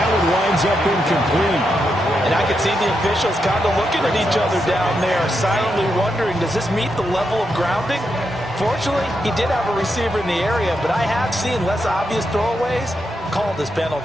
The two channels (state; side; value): noise; left; hum, 30 dB below the sound